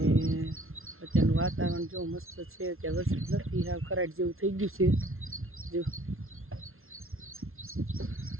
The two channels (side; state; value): left; late; 0.62 ms